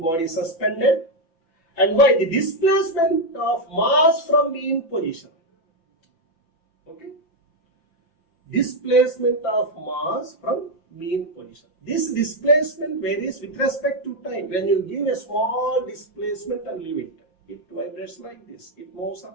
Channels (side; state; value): right; late; 6.0 ms